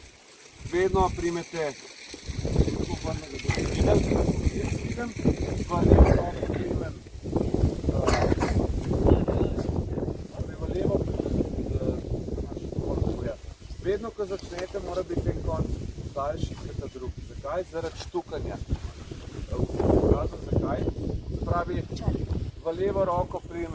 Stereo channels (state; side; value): identical; both; correlation 1.00